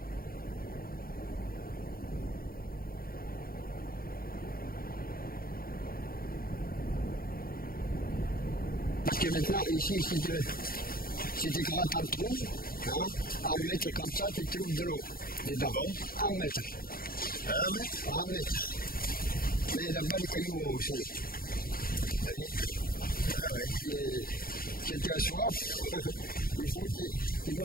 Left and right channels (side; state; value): right; late; 0.43 ms